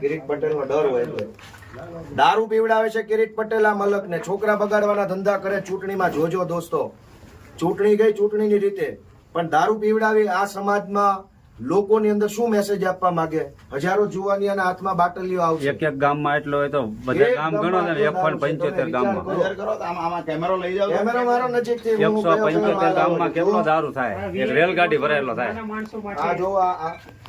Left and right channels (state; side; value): identical; both; correlation 1.00